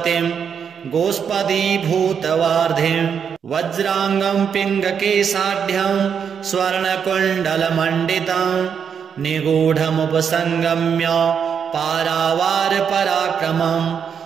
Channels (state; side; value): quieter; left; 7.2 dB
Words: गोष्पदीभूतवार्धिं। वज्राङ्गं पिङ्गकेशाढ्यं स्वर्णकुण्डलमण्डितं निगूढमुपसङ्गम्य पारावारपराक्रमं।